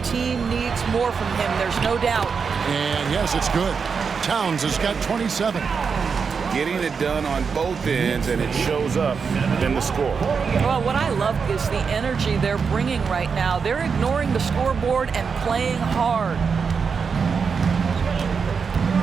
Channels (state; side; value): quieter; left; 5.7 dB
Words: team needs more from him. There's no doubt. And yes, it's good. Towns has got 27. Getting it done on both ends, and it shows up in the score. Well, what I love is the energy they're bringing right now. They're ignoring the scoreboard and playing hard.